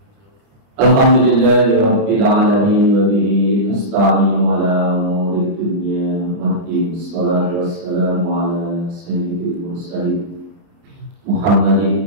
Rabbil alamin wa bihi nasta'inu ala umuri dunya waddin. Wassalatu wassalamu ala sayyidil mursalin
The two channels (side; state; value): left; late; 29 ms